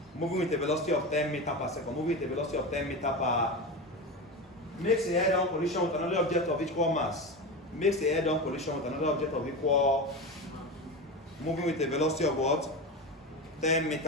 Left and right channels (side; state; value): both; normal; correlation 0.22